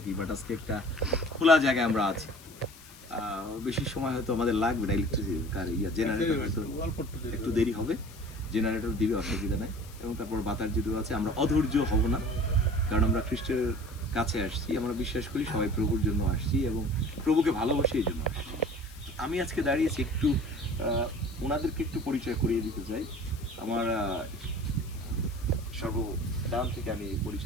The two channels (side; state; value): left; noise; hiss, 21 dB below the sound